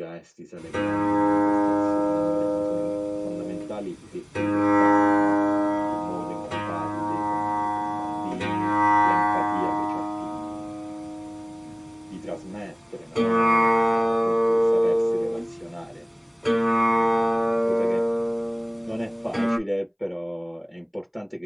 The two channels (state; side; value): identical; both; correlation 1.00